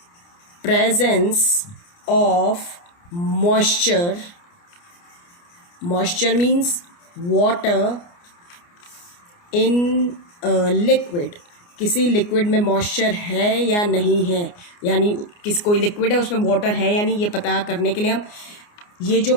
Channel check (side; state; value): right; late; 29 ms